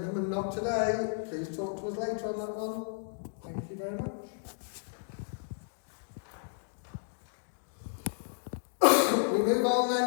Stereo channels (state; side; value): silent; right; digital silence